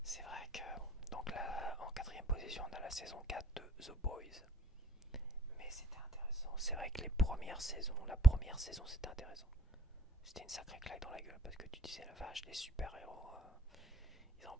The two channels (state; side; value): normal; both; correlation 0.60